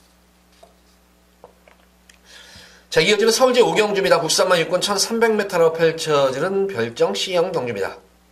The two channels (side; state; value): both; identical; correlation 1.00